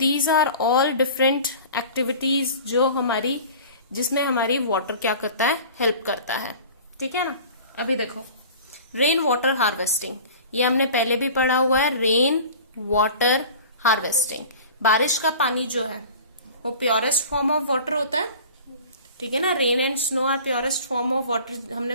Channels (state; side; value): inverted; both; correlation -0.41